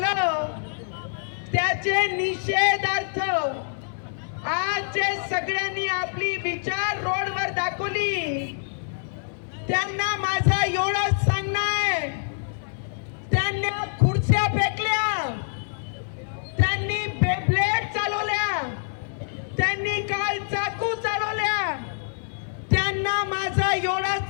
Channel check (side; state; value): right; silent; digital silence